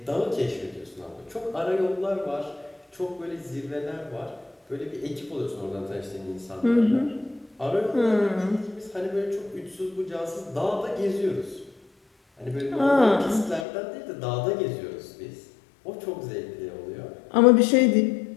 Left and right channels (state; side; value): drops out; right; at 13.7 s